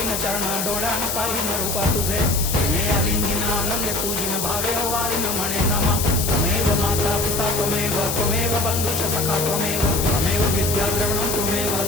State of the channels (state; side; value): noise; left; hiss, 2 dB below the sound